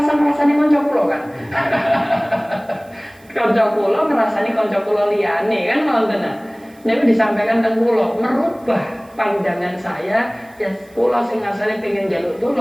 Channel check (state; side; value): noise; right; hiss, 29 dB below the sound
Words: ini konco kulo kan. Konco kulo ngerasani konco kulo liyane kan ngoten. Niku disampaikan teng kulo merubah pandangan saya ya kulo sing asale pengen njaluk